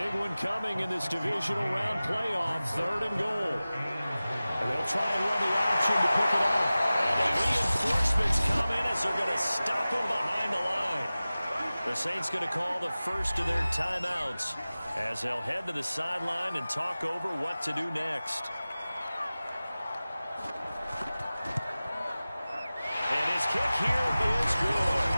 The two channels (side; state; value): both; inverted; correlation -0.97